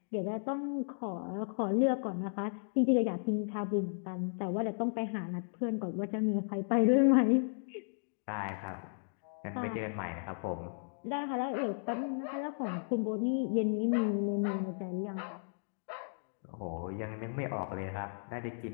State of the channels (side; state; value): right; silent; digital silence